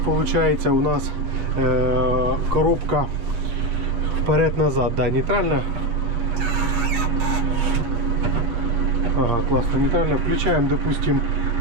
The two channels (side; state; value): left; late; 8.9 ms